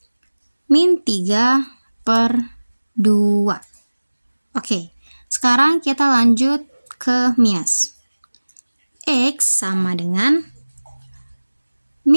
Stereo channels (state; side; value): inverted; both; correlation -1.00